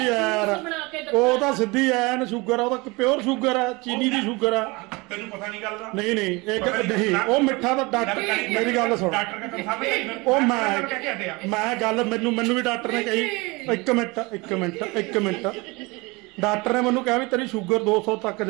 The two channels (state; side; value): quieter; left; 25.1 dB